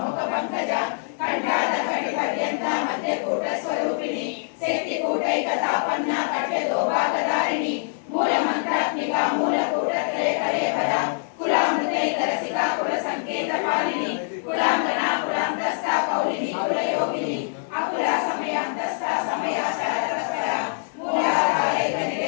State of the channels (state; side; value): silent; right; 62 dB below the other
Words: मुख पंकजा कंठाद कटि पर्यंता मध्य कूट स्वरूपिणी शक्ति कूटैकतापन्ना कट्य दोभागधारिणी मूल मंत्रात्मिका मूल कूटत्रय करे पदा कुलामृतैक रसिका कुल संकेत पालिनी कुलांगना कुलांतस्था कौलिनी कुल योगिनी अकुला समयांतस्था समयाचारतस्परा मूलाधारैक